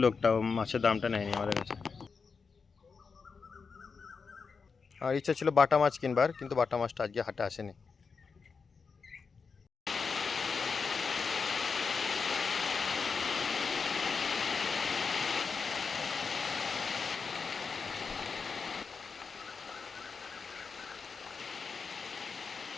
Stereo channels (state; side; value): quieter; right; 5.2 dB